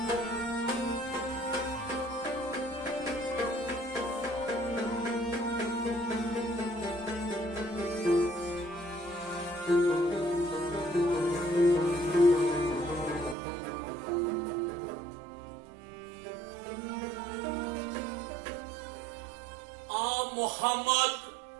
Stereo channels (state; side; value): drops out; left; at 13.4 s